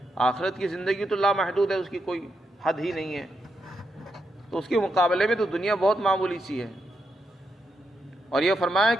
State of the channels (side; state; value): both; normal; correlation 0.83